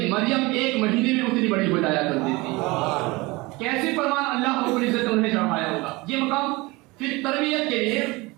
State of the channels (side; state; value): left; quieter; 23.1 dB